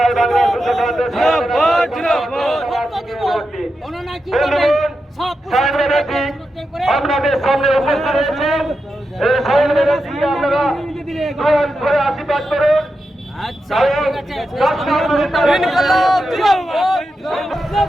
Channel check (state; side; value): normal; both; correlation 0.88